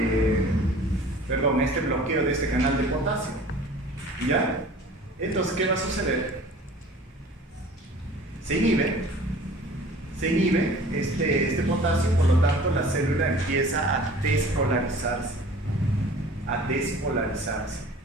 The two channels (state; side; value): normal; both; correlation 0.46